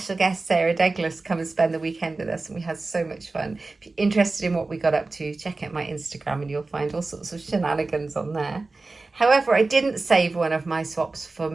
guest, Sarah Douglas, come and spend the weekend with us, and we had so much fun. If you're interested in what we got up to, check out my Instagram and you'll find all sorts of shenanigans on there. However, I didn't save one of my swaps for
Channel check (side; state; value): left; quieter; 3.5 dB